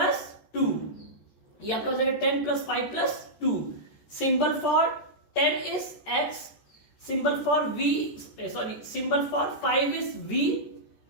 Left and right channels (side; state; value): right; late; 14 ms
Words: 2. ये आपका हो जाएगा 10 plus 5 plus 2. Symbol for 10 is x, symbol for symbol for 5 is v